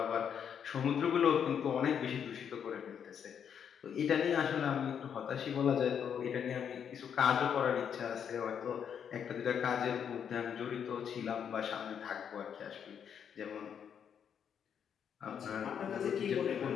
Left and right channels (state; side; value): quieter; right; 8.0 dB